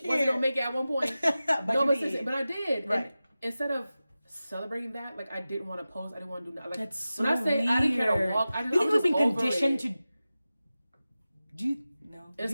Wasn't gonna make it at one point. But No, you but, did. sis, but I did. Right. And instead of celebrating that, like I didn't want to post. I didn't want to do that. Like That's so when I say I didn't care to weird. walk, I You think was we've been just over conditioned it. to? Do you no? It's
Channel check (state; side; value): inverted; both; correlation -0.95